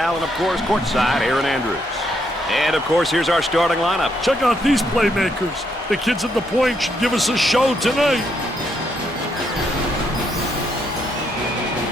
and of course, courtside, Aaron Andrews. And of course, here's our starting lineup. Check out these playmakers. The kids at the point should give us a show tonight.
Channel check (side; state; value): both; normal; correlation 0.76